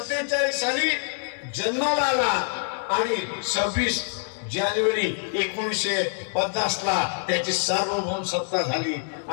साली जन्माला आला आणि 26 जानेवारी 1950 ला त्याची सार्वभौम सत्ता झाली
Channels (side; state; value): right; silent; 61 dB below the other